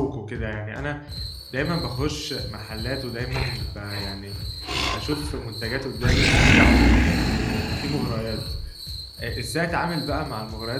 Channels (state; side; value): identical; both; correlation 1.00